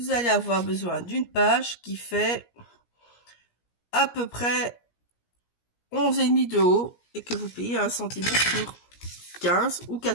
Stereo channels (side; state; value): right; late; 17 ms